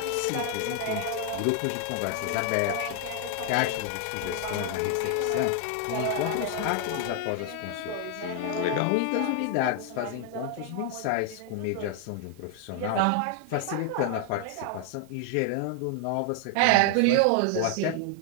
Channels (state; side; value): different; both; correlation 0.00